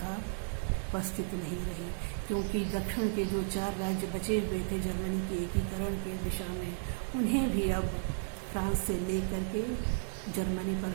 उपस्थित नहीं रही, क्योंकि दक्षिण के जो 4 राज्य बचे हुए थे जर्मनी के एकीकरण के दिशा में, उन्हें भी अब फ्रांस से लेकर के जर्मनी पर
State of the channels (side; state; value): left; silent; digital silence